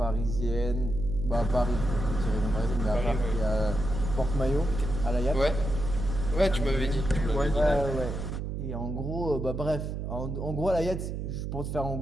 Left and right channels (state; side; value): noise; right; hum, 4 dB below the sound